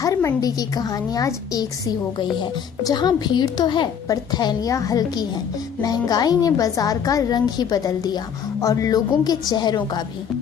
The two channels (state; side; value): quieter; right; 7.7 dB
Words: मंडी की कहानी आज एक सी हो गई है। जहां भीड़ तो है पर थैलियां हल्की हैं। महंगाई ने बाजार का रंग ही बदल दिया और लोगों के चेहरों का भी।